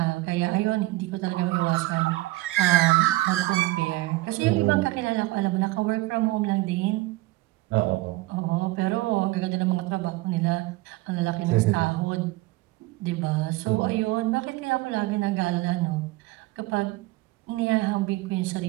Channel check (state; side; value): quieter; left; 19.7 dB